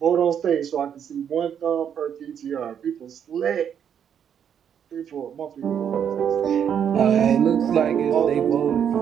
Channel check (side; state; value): left; quieter; 8.5 dB